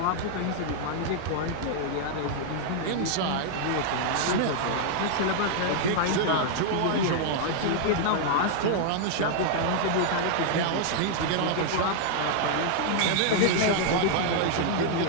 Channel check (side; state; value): both; different; correlation 0.00